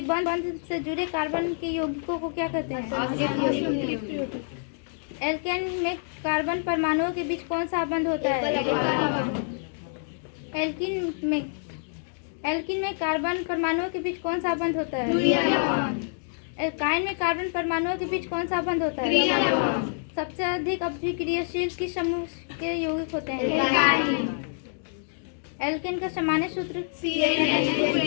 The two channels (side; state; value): right; silent; digital silence